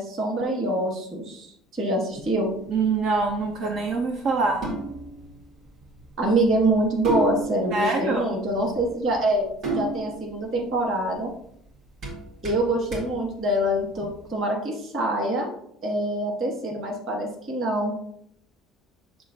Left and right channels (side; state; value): both; normal; correlation 0.47